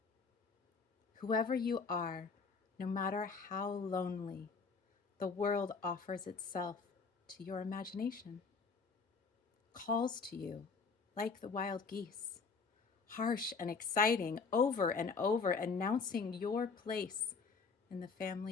Whoever you are, no matter how lonely, the world offers itself to your imagination, calls to you like the wild geese, harsh and exciting, over and over, announcing your place in the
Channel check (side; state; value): right; quieter; 4.9 dB